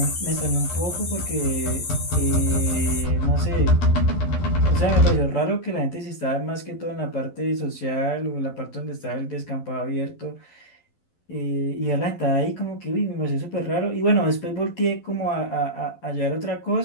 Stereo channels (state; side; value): late; right; 12 ms